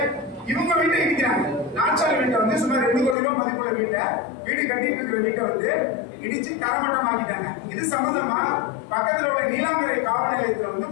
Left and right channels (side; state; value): right; drops out; at 3.2 s